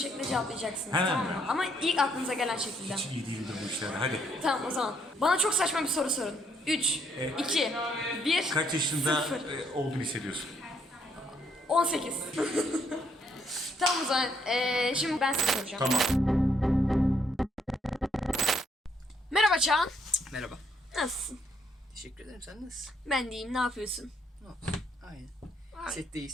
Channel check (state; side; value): normal; both; correlation 0.71